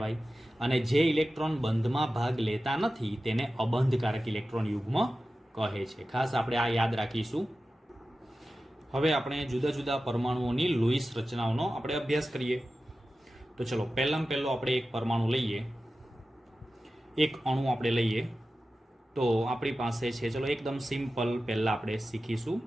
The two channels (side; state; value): both; normal; correlation 0.94